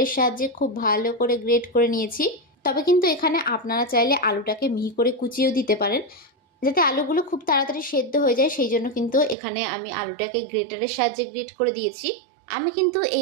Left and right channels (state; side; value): drops out; left; at 9.3 s